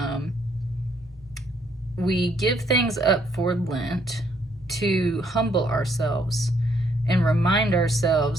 We give things up for Lent to humble ourselves and remind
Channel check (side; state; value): right; noise; rumble, 26 dB below the sound